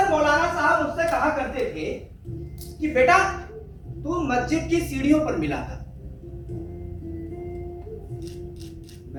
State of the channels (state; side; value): identical; both; correlation 1.00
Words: मौलाना साहब मुझसे कहा करते थे कि बेटा तू मस्जिद की सीढ़ियों पर मिला था।